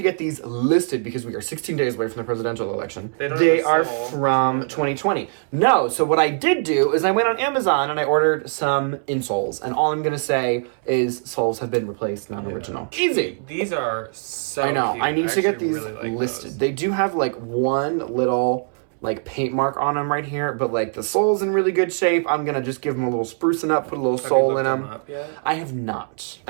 get these listed because we are 16 days away from the presidential election. They are from 2020. No, so what I did do is I went on Amazon and I ordered some insoles, and all I'm gonna say is soles have been replaced, non-original. Easy. These are so I know. cute. I need to get these really listed. They do have like one little like paint mark on them right here, but like the sole's in really good shape. I'm gonna just give them a little sprucing up, put a little sole in them. Up yet? I have not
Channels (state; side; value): silent; left; 64 dB below the other